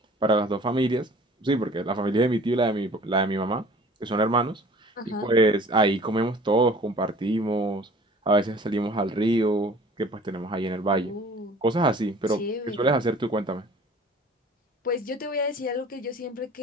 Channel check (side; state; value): both; normal; correlation 0.49